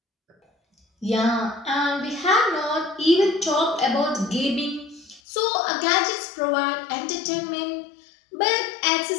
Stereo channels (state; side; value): drops out; right; at 5.2 s